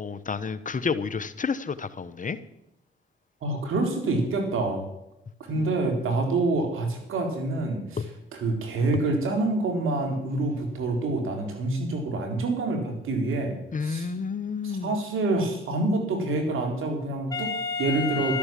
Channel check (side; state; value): both; normal; correlation 0.44